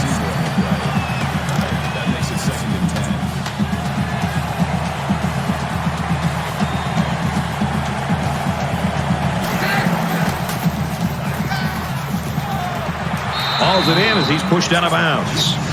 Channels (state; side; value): identical; both; correlation 1.00